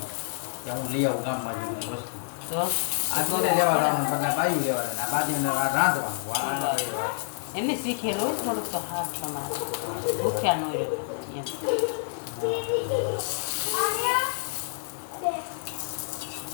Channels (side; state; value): right; silent; digital silence